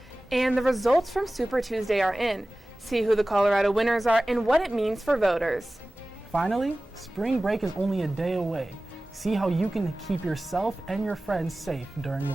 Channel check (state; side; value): normal; both; correlation 0.97